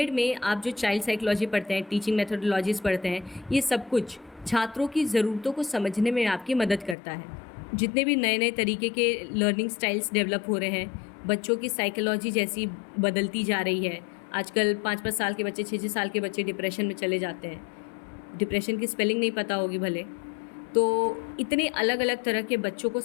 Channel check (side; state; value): right; drops out; at 7.0 s